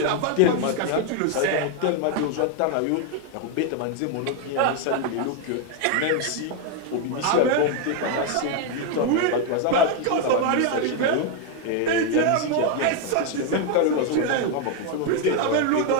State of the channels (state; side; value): different; both; correlation 0.01